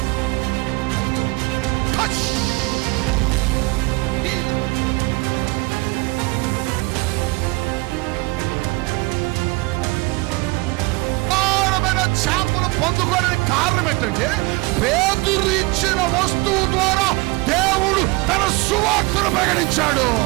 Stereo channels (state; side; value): quieter; left; 25.1 dB